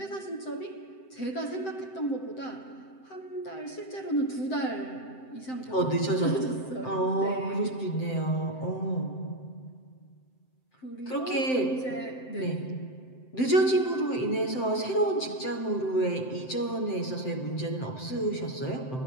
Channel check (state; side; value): late; right; 7.8 ms